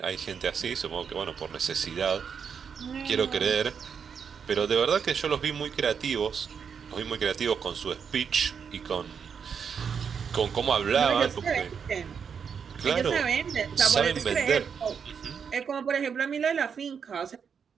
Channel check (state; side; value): quieter; left; 6.8 dB